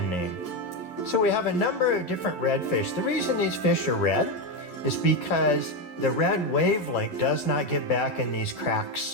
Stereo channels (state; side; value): late; right; 11 ms